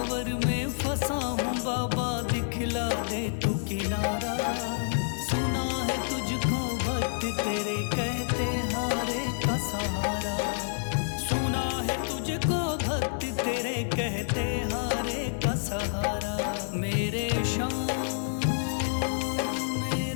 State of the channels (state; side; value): silent; right; 59 dB below the other